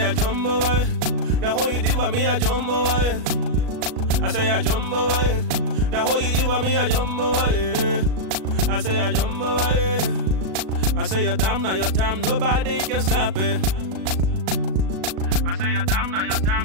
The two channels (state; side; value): late; left; 37 ms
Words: I jump over it. The whole you did for me, I jump over it. I say I jump over it. The whole you did for me, I jump over it. I say I jump over it. I say your time, now your time, nobody can stop it. I say your time, now your